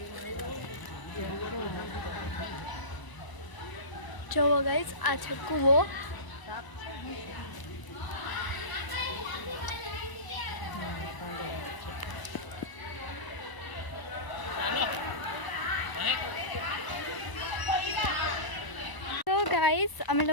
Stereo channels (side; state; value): right; late; 1.0 ms